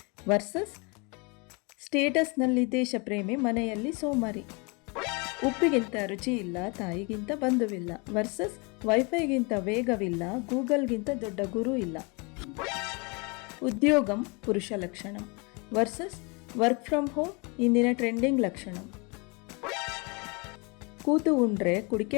ವರ್ಸಸ್ ಸ್ಟೇಟಸ್ನಲ್ಲಿ ದೇಶಪ್ರೇಮಿ ಮನೆಯಲ್ಲಿ ಸೋಮಾರಿ. ಉಪ್ಪಿಗಿಂತ ರುಚಿ ಇಲ್ಲ ತಾಯಿಗಿಂತ ಬಂಧುವಿಲ್ಲ ವರ್ಸಸ್ ವೈಫೈಗಿಂತ ವೇಗವಿಲ್ಲ ಗೂಗಲ್ಗಿಂತ ದೊಡ್ಡ ಗುರು ಇಲ್ಲ. ಉದ್ಯೋಗಂ ಪುರುಷ ಲಕ್ಷಣ ವರ್ಸಸ್ ವರ್ಕ್ ಫ್ರಮ್ ಹೋಮ್ ಇಂದಿನ ಟ್ರೆಂಡಿಂಗ್ ಲಕ್ಷಣ. ಕೂತು ಉಂಡ್ರೆ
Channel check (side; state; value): right; quieter; 30.6 dB